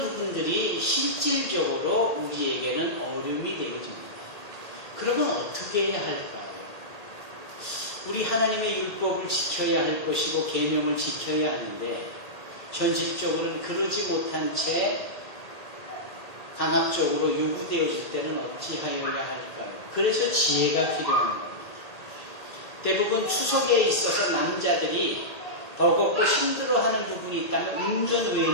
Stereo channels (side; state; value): right; late; 1.8 ms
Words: 실질적으로 우리에게는 어려움이 되어집니다. 그러면 어떻게 해야 할까요? 우리 하나님의 율법을 지켜야 할 것이고 계명을 지켜야 하는데 현실적으로는 그러지 못한 채 강압적으로 요구되어질 때는 어찌하여야 할까요? 그래서 지혜가 필요한 겁니다. 대부분 추석에 있어서 남자들이 버겁고 힘들어하는 부분이 있다면 운전